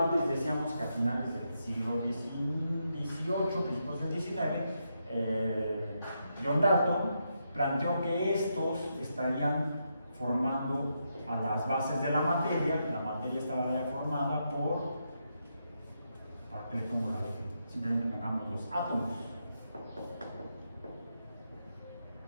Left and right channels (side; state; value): both; inverted; correlation -0.82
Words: decíamos que a finales del siglo XVIII, principios del XIX, John Dalton planteó que estos estarían formando a las bases de la materia estaba ya formada por, ¿para qué le pongo la F? Simplemente pongamos los átomos.